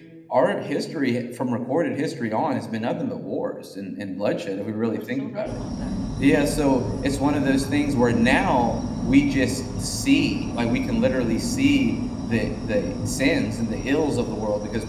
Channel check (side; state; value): both; identical; correlation 1.00